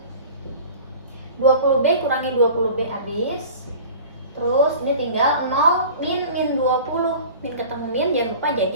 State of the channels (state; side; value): inverted; both; correlation -0.41